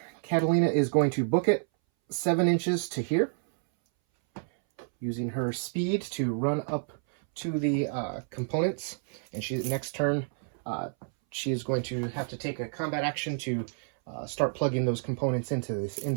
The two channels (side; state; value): left; silent; 58 dB below the other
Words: Catalina is going to book it 7 inches to here, using her speed to run up to the components. And next turn, she is going to have to take a combat action to start plugging those components into